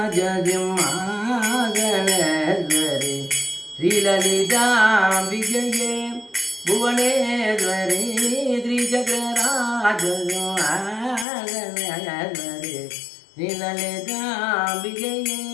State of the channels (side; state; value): right; drops out; at 11.2 s